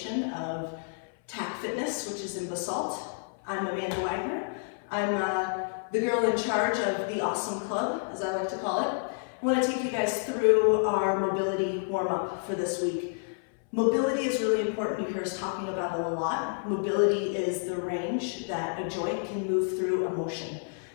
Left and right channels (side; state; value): right; silent; 58 dB below the other